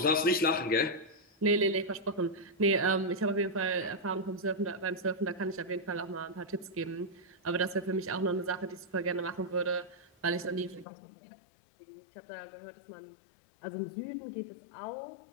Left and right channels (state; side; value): drops out; right; at 10.9 s